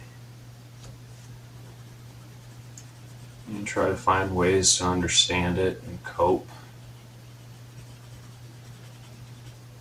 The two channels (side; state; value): both; identical; correlation 1.00